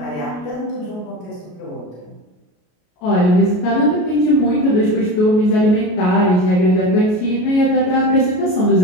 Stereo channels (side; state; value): right; late; 33 ms